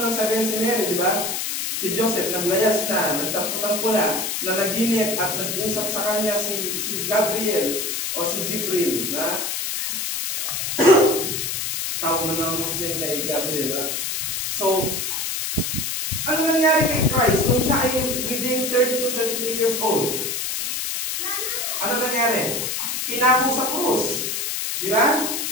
sabihin si Mary, di ba? Si Joseph, naglayas na, nagtampo-tampo na naginip at nag-usap sa kanya si Gabriel o si Jibril, na tawag mo ng Muslim kay Gabriel. Ha? So, ano nangyari kay Christ nung siya ay within 30 to 33 years old? Ano nangyari? Pinako sa krus. Di ba?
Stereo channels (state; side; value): noise; left; hiss, 2 dB below the sound